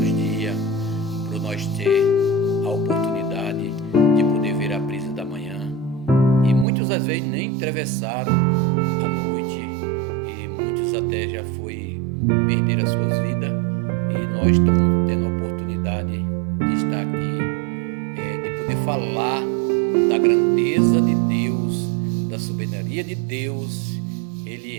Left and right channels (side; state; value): left; drops out; at 6.7 s